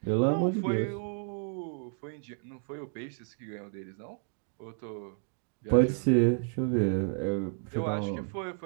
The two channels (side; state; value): left; silent; 56 dB below the other